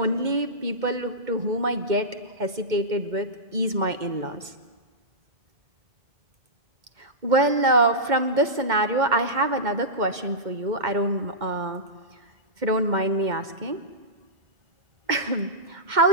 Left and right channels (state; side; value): late; left; 2.1 ms